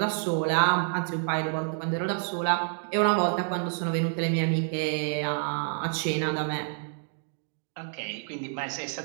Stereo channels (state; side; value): silent; left; 56 dB below the other